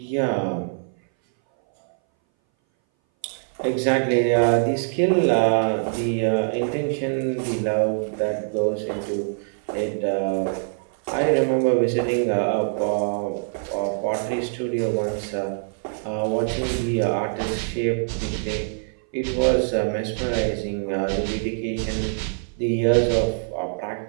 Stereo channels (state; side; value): silent; left; 60 dB below the other